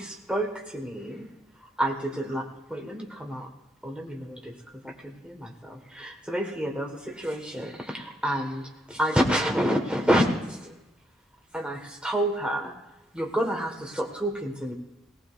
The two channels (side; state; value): both; normal; correlation 0.76